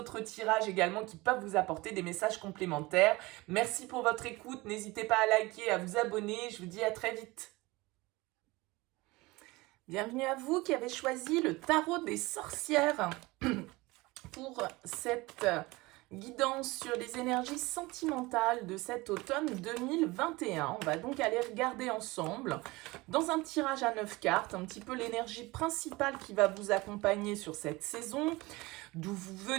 tirages également qui peuvent vous apporter des messages complémentaires. Merci pour votre écoute. N'hésitez pas à liker, à vous abonner. Je vous dis à très vite. Bienvenue à vous qui avez choisi le tarot des sorcières pour cette guidance sur les énergies sentimentales de cet automne 2021. On va donc aller regarder ensemble dans un tirage à 9 cartes un petit peu l'énergie principale qui va vous accompagner sur cette saison, d'où vous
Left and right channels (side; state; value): left; quieter; 21.9 dB